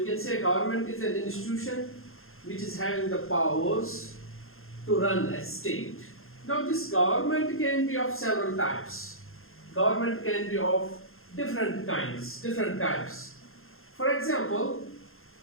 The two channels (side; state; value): right; late; 0.61 ms